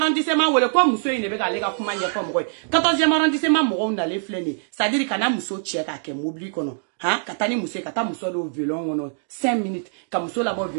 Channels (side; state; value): left; silent; digital silence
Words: wole ko muso ine be ga lega kuma nye ko mo. 14e arrondissement mo na le fleni. Ça dit kana muso check ake mobili kono. Ha katani muso kata muso do violon ono 5 minutes ka muso la bo